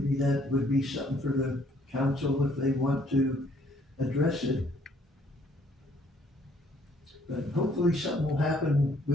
that would be something for the council if they want to address it. But hopefully something will happen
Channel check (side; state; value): both; normal; correlation 0.64